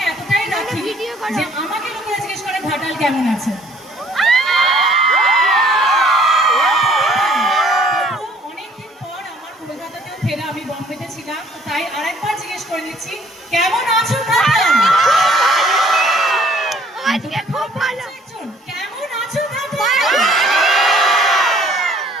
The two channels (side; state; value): both; normal; correlation 0.59